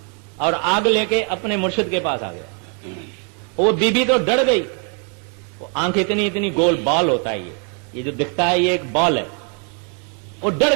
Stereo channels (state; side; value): quieter; left; 39.7 dB